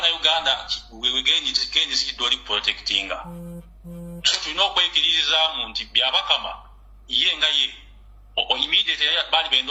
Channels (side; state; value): both; identical; correlation 1.00